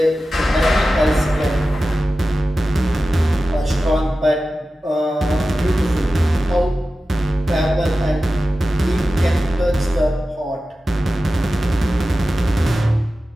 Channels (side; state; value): both; normal; correlation 0.94